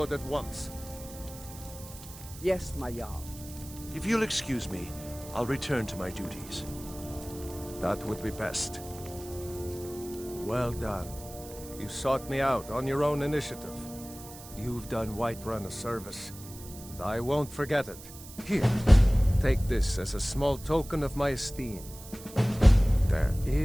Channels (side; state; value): right; noise; hiss, 16 dB below the sound